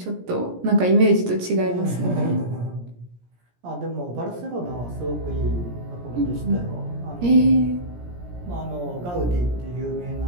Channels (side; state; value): left; late; 17 ms